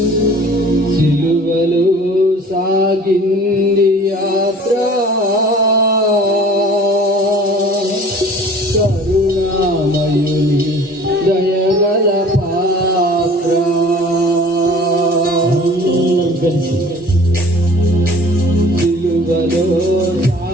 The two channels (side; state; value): both; normal; correlation 0.47